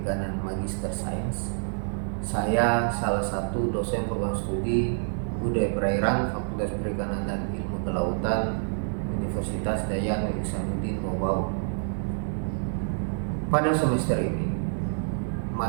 Magister Sains. Saya salah satu dosen program studi Budaya Perairan Fakultas Perikanan dan Ilmu Kelautan Universitas Dayang Ihsanuddin Wabau. Pada semester ini,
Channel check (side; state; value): left; silent; digital silence